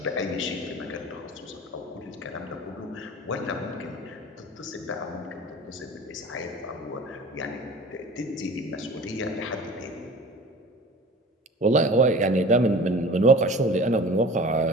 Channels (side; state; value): both; normal; correlation 0.41